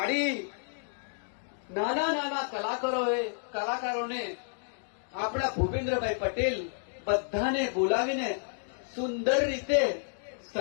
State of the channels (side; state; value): right; silent; digital silence